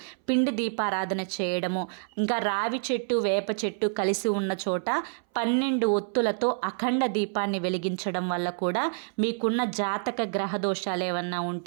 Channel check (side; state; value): left; silent; 60 dB below the other